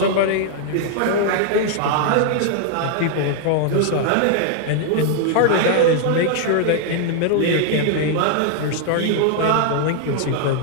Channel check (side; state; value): both; different; correlation 0.00